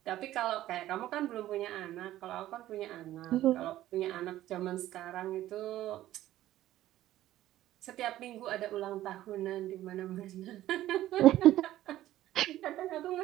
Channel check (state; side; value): quieter; left; 14.1 dB